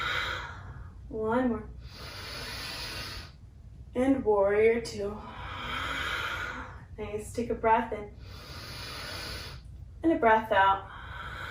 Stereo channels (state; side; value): identical; both; correlation 1.00